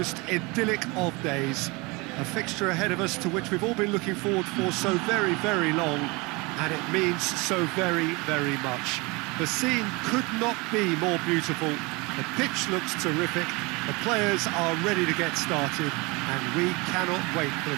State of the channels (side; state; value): left; quieter; 26.1 dB